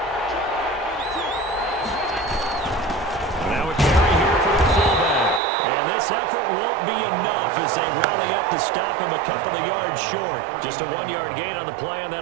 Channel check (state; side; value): drops out; left; at 5.4 s